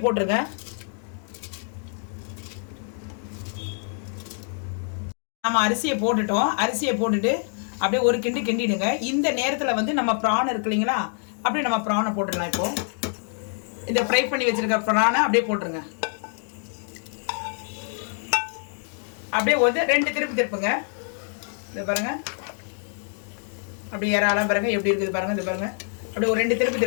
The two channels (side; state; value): right; silent; 56 dB below the other